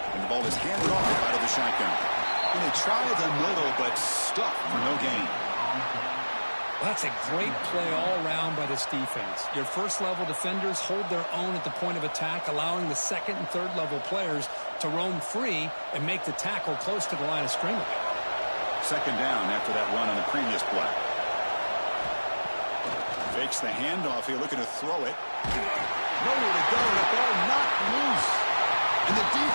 And the ball is handed off out of the shotgun. And they try the middle, but stuck for no gain. Well, that's a great play all around by this defense. Your first-level defenders hold their own at the point of attack, allowing the second and third-level players to roam free and make the tackle close to the line of scrimmage. Second down after that run on the previous play. Fakes the handoff here, looking to throw it. Nowhere to go, the ball not loose. And the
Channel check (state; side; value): inverted; both; correlation -1.00